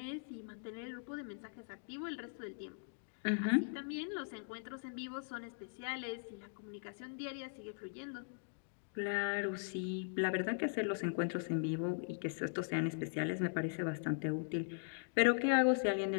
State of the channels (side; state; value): right; silent; digital silence